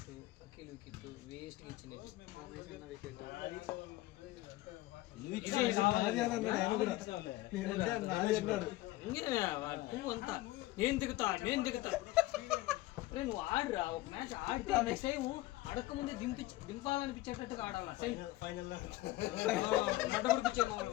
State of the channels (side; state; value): right; quieter; 17.8 dB